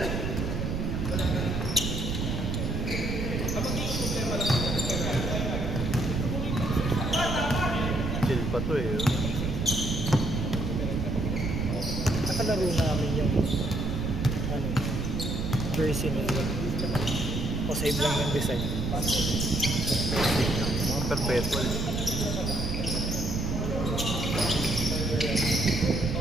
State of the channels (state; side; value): noise; right; rumble, 2 dB below the sound